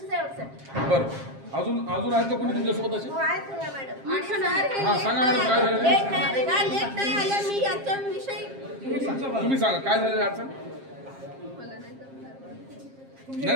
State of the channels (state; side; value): late; left; 7.5 ms